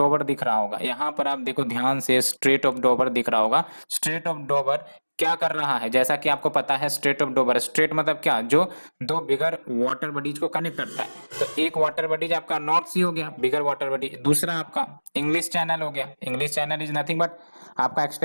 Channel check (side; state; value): both; inverted; correlation -1.00